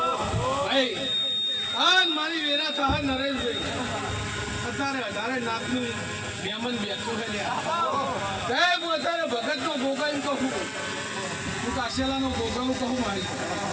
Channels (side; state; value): both; identical; correlation 1.00